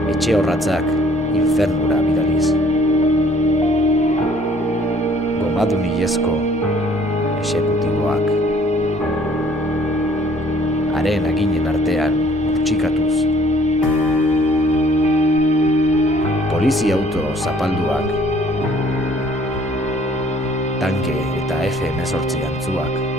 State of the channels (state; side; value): normal; both; correlation 0.58